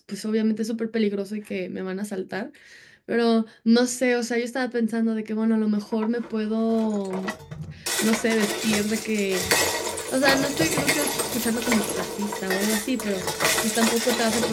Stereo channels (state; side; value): identical; both; correlation 1.00